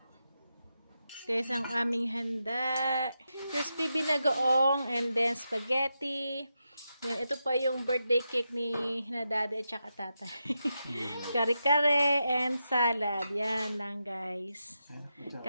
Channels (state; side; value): inverted; both; correlation -0.87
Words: Guys, ang aming handa. Crispy binagoong and then spaghetti. Then, ito pa yung birthday cake ni Daddy at saka tatay. Kare-kare and salad. Yan lang, guys.